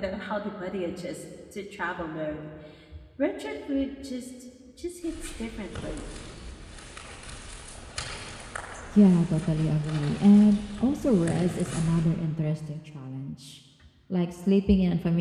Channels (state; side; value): identical; both; correlation 1.00